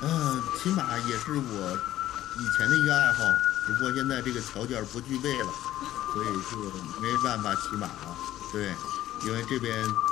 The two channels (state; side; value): quieter; right; 13.6 dB